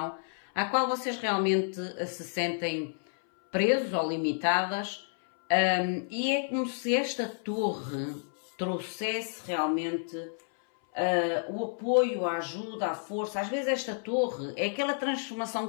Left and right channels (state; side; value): silent; right; 58 dB below the other